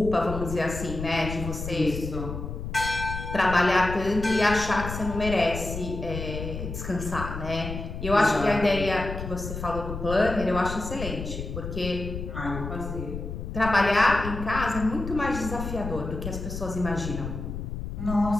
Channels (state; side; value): noise; left; rumble, 7 dB below the sound